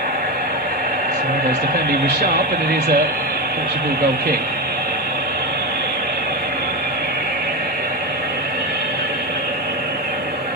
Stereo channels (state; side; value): normal; both; correlation 0.16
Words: His defending was sharp, and it is a Portugal goal kick.